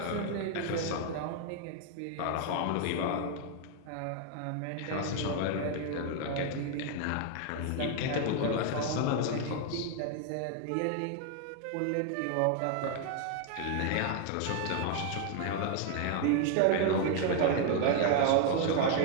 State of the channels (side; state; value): both; different; correlation 0.01